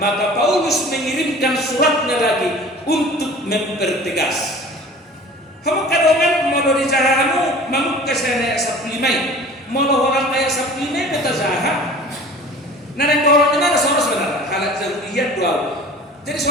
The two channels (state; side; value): normal; both; correlation 0.43